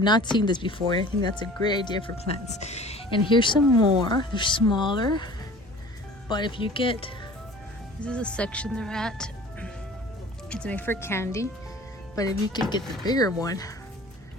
not seen this before. I think that's a great idea for plants. And here's some more. They're smaller, but if you get, this is a section they're at. It's made for candy, but if you could get the bigger one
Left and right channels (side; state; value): both; normal; correlation 0.44